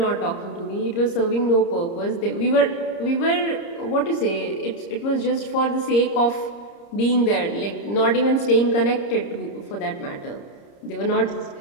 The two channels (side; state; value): right; late; 30 ms